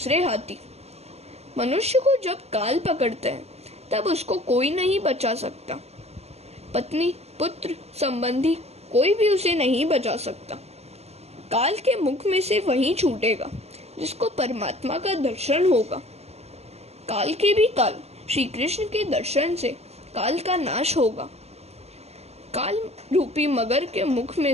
हाथी। मनुष्य को जब काल पकड़ते हैं तब उसको कोई नहीं बचा सकता। पत्नी, पुत्र, संबंधी कोई भी उसे नहीं बचा सकता। काल के मुख में से वही छूटेगा जिसको परमात्मा का दर्शन होगा। काल के भी काल श्री कृष्ण के दर्शन से काल का नाश होगा। काल रूपी मगर के मुख में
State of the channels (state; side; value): late; left; 0.30 ms